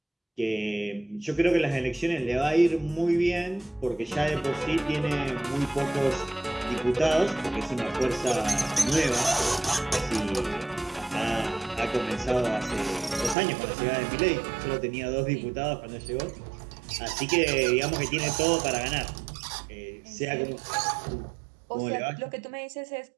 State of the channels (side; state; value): left; drops out; at 13.4 s